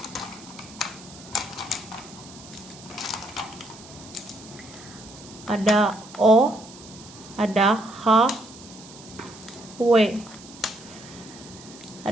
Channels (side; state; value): right; noise; hiss, 18 dB below the sound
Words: Ada O, ada H, W.